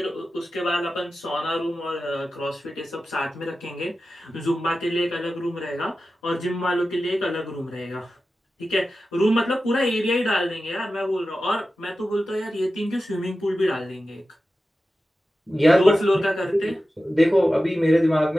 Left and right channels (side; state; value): both; normal; correlation 0.93